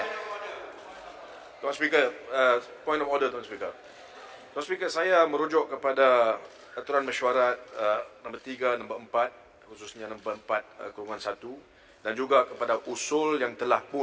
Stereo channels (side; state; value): both; identical; correlation 1.00